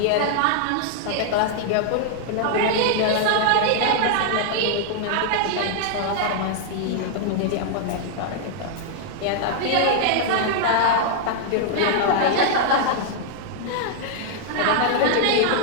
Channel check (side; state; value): both; different; correlation -0.01